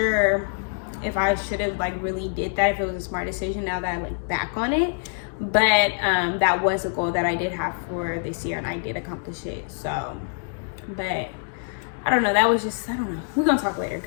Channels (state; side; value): silent; right; digital silence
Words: if I should have like really did that, if it was a smart decision now that I look back on it. But that was a goal that I did have for this year, and I did accomplish it. So, but I don't know. That was just, I don't know. We're gonna talk later